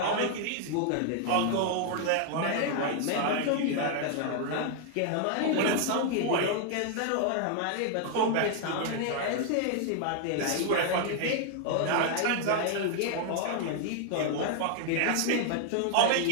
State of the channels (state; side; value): different; both; correlation 0.00